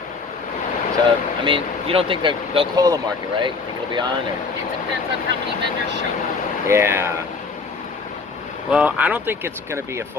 So, I mean, you don't think they'll call the market, right? Think it'll be on? Or? It depends on how many vendors show up. Yeah. Well, I don't think it's going to be a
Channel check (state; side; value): quieter; right; 4.4 dB